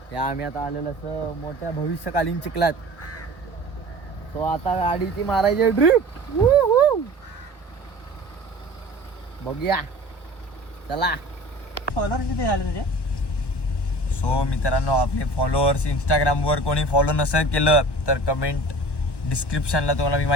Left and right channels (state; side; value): late; right; 1.1 ms